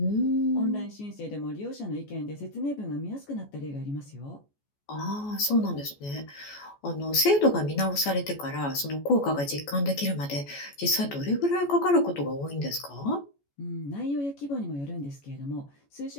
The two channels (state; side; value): late; right; 14 ms